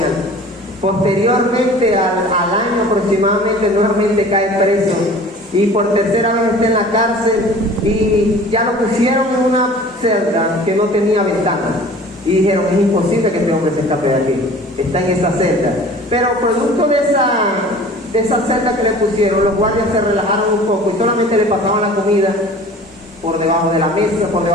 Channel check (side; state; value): both; normal; correlation 0.44